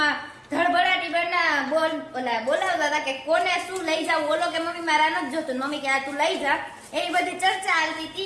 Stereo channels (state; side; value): identical; both; correlation 1.00